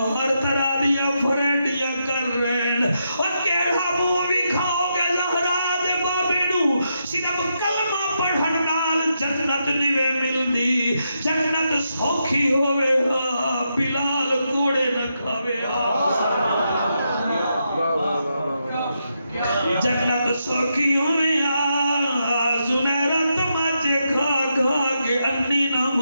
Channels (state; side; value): inverted; both; correlation -0.82